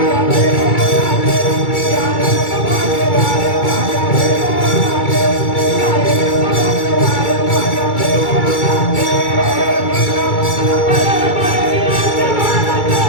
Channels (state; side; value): late; right; 2.3 ms